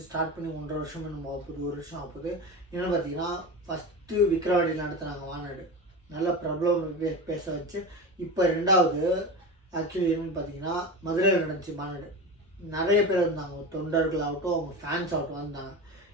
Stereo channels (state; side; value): normal; both; correlation 0.25